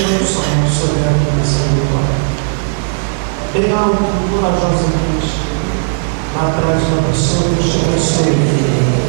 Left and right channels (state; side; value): silent; left; digital silence